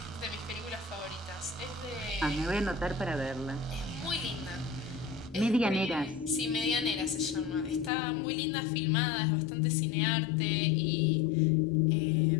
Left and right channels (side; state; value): right; drops out; at 7.9 s